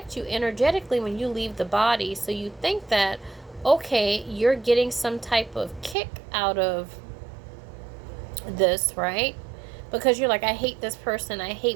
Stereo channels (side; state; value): left; drops out; at 6.0 s